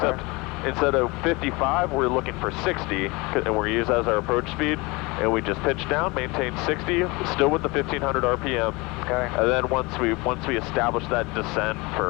instead of 55, we're looking for 60, and we're used as our approach speed. And we just pitch down, maintain 60, still with the 1500 RPM. Okay. And then once we establish that descent for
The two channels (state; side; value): quieter; right; 24.8 dB